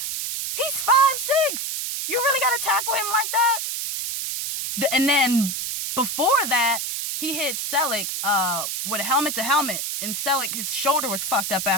He's 5'6". You really got to tackle him like that? And then before that, he hit Selleck with a helmet to helmet. And Selleck, his shoulder was fucked up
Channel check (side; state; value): right; noise; hiss, 3 dB below the sound